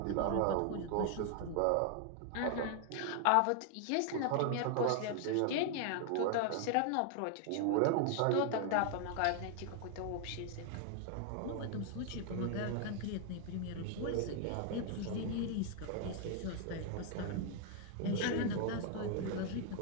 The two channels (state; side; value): different; both; correlation 0.00